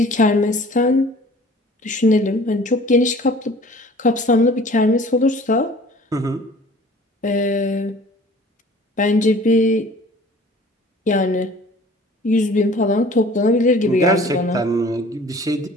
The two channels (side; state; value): both; normal; correlation 0.48